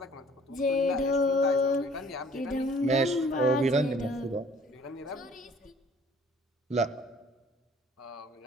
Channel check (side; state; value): both; normal; correlation 0.54